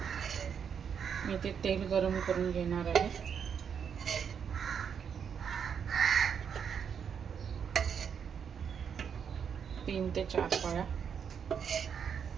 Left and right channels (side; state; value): left; quieter; 7.3 dB